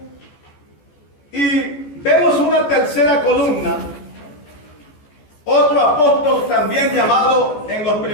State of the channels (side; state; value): right; late; 14 ms